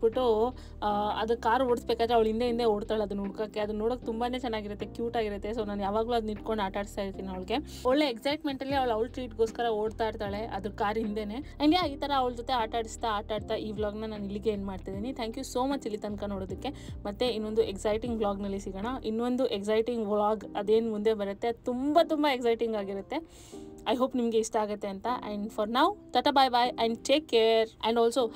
ಅದು ಕಾರ್ ಓಡಿಸ್ಬೇಕಾದ್ರೆ ಅವಳು ಹಿಂದೆ ಓಡ್ತಾಳೆ ಅದನ್ನ ಹುಡ್ಕೋಕ್ಕೆ. ಅದು ನೋಡೋಕೆ ತುಂಬಾ ಚೆನ್ನಾಗಿರುತ್ತೆ, ಕ್ಯೂಟ್ ಆಗಿರುತ್ತೆ. ಸೊ ನಾನು ಯಾವಾಗಲೂ ಅದನ್ನ ಇಟ್ಕೊಂಡು ಆಟ ಆಡಿಸ್ತಾ ಇರ್ತೀನಿ ಅವಳಿಗೆ. ಒಳ್ಳೆ ಎಕ್ಸೈಟ್ಮೆಂಟಲ್ಲಿ ಅವಳು ಟ್ರೀಟ್ಗೋಸ್ಕರ ಓಡ್ತಾ ಇರ್ತಾಳೆ ಅದ್ರ ಕಾರ್ ಹಿಂದೆನೇ. ಆ್ಯಂಡ್ ಈ ಥರ ಅವಳ ಜೊತೆ ಆಟ ಆಡ್ತಾ ಈ ವ್ಲಾಗ್ನ ನಾನು ಇಲ್ಲಿಗೆ ಏನು ಮಾಡ್ತಿದ್ದೀನಿ. ಥ್ಯಾಂಕ್ ಯು ಸೋ ಮಚ್ ಇಲ್ಲಿ ತನಕ ನೋಡೋದಕ್ಕೆ. ಮತ್ತೆ ಇನ್ನೊಂದು ಎಕ್ಸೈಟಿಂಗ್ ವ್ಲಾಗ್ನಲ್ಲಿ ಸಿಗೋಣ. ಇನ್ನೊಂದು ಎಕ್ಸೈಟಿಂಗ್ ವ್ಲಾಗ್ ಅದೇನು ಮುಂದೆ ಬರುತ್ತೆ ತುಂಬ ಎಕ್ಸೈಟಿಂಗ್ ಆಗಿರುತ್ತೆ. ಐ ಹೋಪ್ ನಿಮಗೆ ಇಷ್ಟ ಆಗುತ್ತೆ ಅಂತ. And for now tata bye bye and take care and also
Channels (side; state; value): both; identical; correlation 1.00